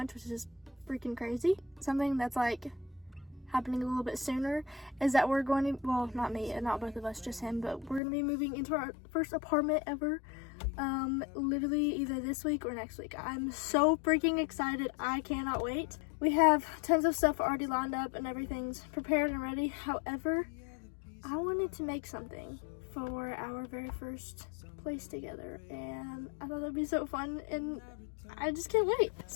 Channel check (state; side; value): drops out; right; at 8.0 s